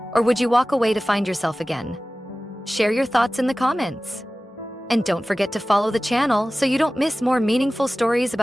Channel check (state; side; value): normal; both; correlation 0.97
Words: or would you walk away to find yourself again? Share your thoughts in the comments. And don't forget to follow the channel so you don't miss more meaningful stories